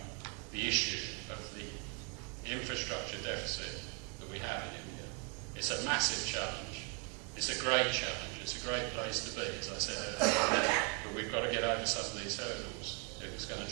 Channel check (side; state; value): left; quieter; 35.6 dB